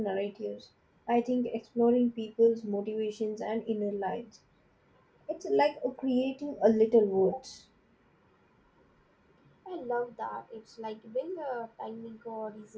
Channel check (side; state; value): both; identical; correlation 1.00